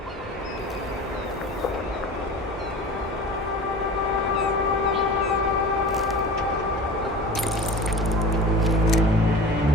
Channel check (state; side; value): normal; both; correlation 0.37